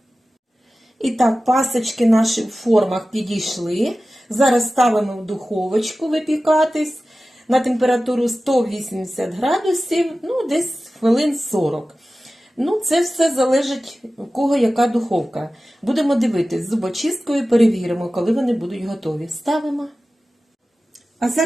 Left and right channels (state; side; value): normal; both; correlation 0.95